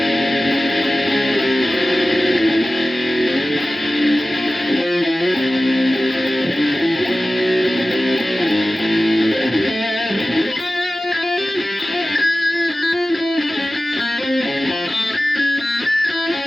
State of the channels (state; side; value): normal; both; correlation 0.96